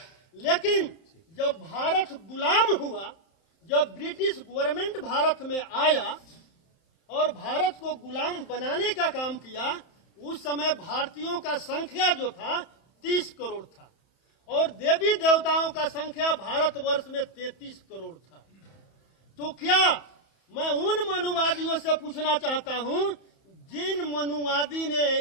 लेकिन जब भारत गुलाम हुआ, जब ब्रिटिश गवर्नमेंट भारत में आया और भारत को गुलाम बनाने का काम किया, उस समय भारतीयों का संख्या जो था 30 करोड़ था और देवी देवताओं का संख्या भारतवर्ष में 33 करोड़ था। तो क्या मैं उन मनुवादियों से पूछना चाहता हूं जिन मनुवादी ने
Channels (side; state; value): right; late; 31 ms